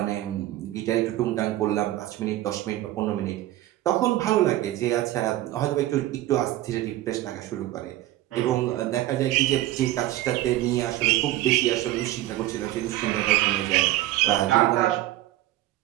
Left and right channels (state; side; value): quieter; left; 15.2 dB